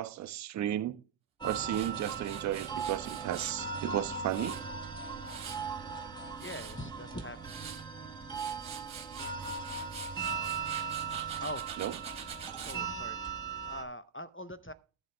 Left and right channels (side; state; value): left; quieter; 7.1 dB